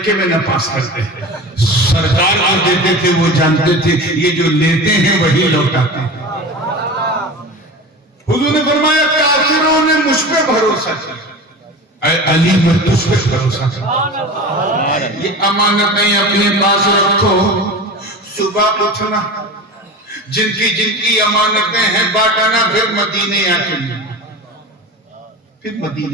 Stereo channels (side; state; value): both; normal; correlation 0.32